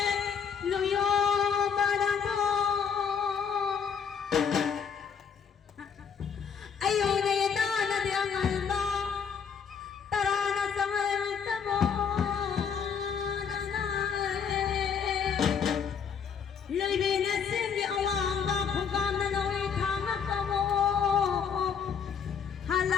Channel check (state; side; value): quieter; right; 6.8 dB